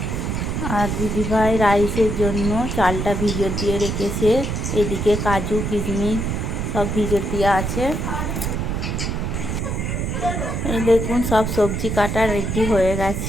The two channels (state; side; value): noise; right; rumble, 2 dB below the sound